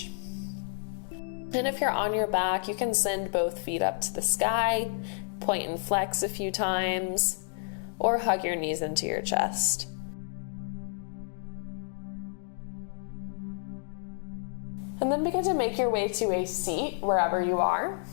And if you're on your back, you can send both feet up to the sky, point and flex a few times, or hug your knees into your chest. And then begin to make your way to a seat wherever you are.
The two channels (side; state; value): right; silent; digital silence